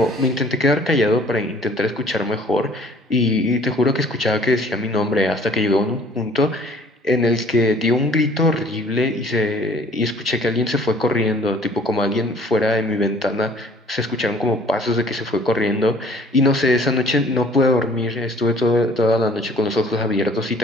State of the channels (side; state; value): both; normal; correlation 0.54